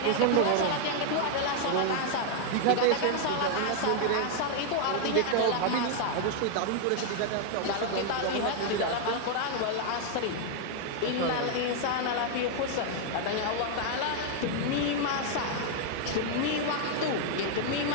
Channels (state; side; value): different; both; correlation 0.00